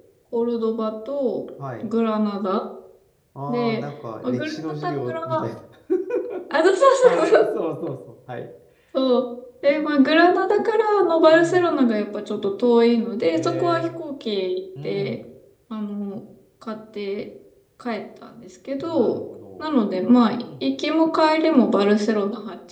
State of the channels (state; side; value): identical; both; correlation 1.00